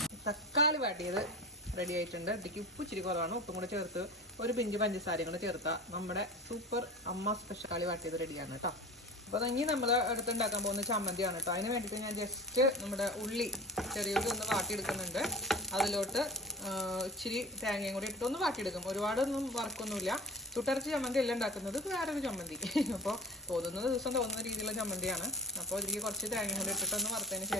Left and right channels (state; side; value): normal; both; correlation 0.37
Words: തക്കാളി വാട്ടിയത് റെഡി ആയിട്ടുണ്ട്. ഇതിലേക്ക് ഉപ്പ് ഇച്ചിരി കുറവാണ്. ഉപ്പും കൂടെ ചേർത്ത് ഒരു പിഞ്ച് പഞ്ചസാരയും കൂടെ ചേർത്താൽ നമ്മുടെ സൂപ്പർ അമ്മ സ്പെഷ്യൽ കളി വാട്ടിയത് റെഡിയാണ് കേട്ടോ. അപ്പോൾ ഇനി നമ്മൾ അടുത്തുണ്ടാക്കാൻ പോകുന്ന ചമ്മന്തിയാണ് കേട്ടോ. അതിന് വേണ്ടിയിട്ട് ഞാൻ ജസ്റ്റ് നമ്മുടെ ചെറിയുള്ളി ഒന്ന് വാട്ടിയെടുക്കുന്നുണ്ട്. അതിലോട്ട് ഇച്ചിരി തേങ്ങയും കൂടി ഇട്ട് ഒന്ന് വാട്ടിയെടുക്കും. ഒരുപാടൊന്നും വറക്കൊന്നുമില്ല. ചുട്ടരച്ച് ചമ്മന്തി എല്ലാം ഉണ്ടാക്കുന്നത് വേറൊരു ചമ്മന്തി. അപ്പോൾ തോന്നുന്ന ദിവസം തോന്നുന്ന രീതിയിലുള്ള ചമ്മന്തിയാണ്. അപ്പോൾ ഇതിലേക്ക് കുറച്ച് തേങ്ങയും കൂടി ഇട്ടിട്ടൊന്ന് വറുത്തതിന്